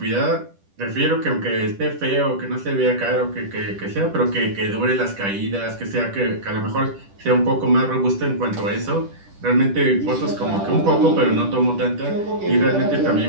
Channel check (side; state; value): left; late; 10 ms